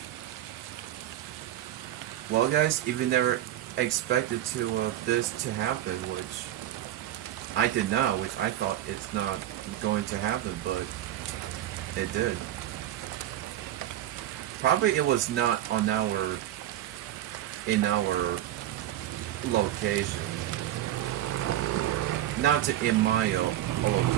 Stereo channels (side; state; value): left; quieter; 12.6 dB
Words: Well, guys, if you never expected this to happen, which I did not, which I thought it's not going to happen, but it did. Probably it was not on in our location, not to in my